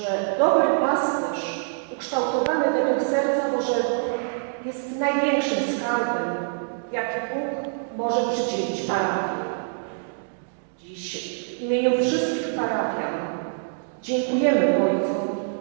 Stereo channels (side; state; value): left; silent; digital silence